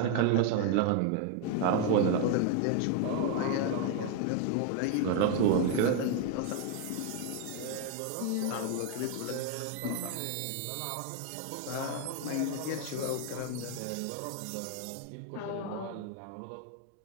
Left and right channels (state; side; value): different; both; correlation 0.01